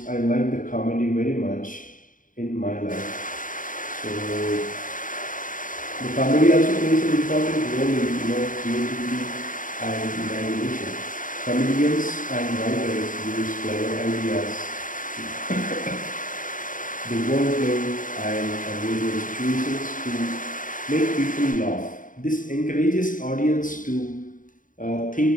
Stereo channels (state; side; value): late; right; 0.39 ms